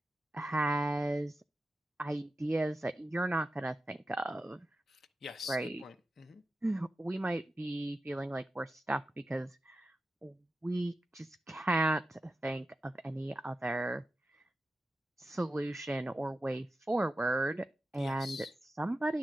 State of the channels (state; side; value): normal; both; correlation 0.92